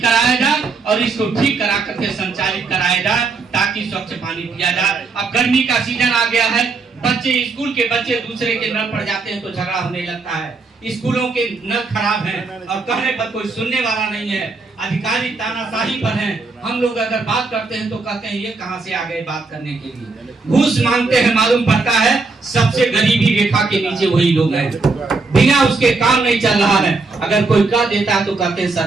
कराया जाए, और इसको ठीक करा करके संचालित कराया जाए, ताकि स्वच्छ पानी पिया जाए। अब गर्मी का सीजन आ गया है, स्कूल के बच्चे दूसरे के नल पर जाते हैं तो झगड़ा होने लगता है। स्कूलों के नल खराब हैं और कहने पर कोई सुनने वाला नहीं है, अधिकारी तानाशाही पर हैं। हम लोग अगर बात करते हैं तो कहते हैं ये कहां से आ गए बात करने के लिए, घूस मांगते हैं। मालूम पड़ता है सबसे गरीबी रेखा के नीचे वही लोग हैं, बिना उसके काम नहीं चल रहा है। अगर कोई कह देता है तो कहते हैं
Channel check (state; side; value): quieter; left; 4.0 dB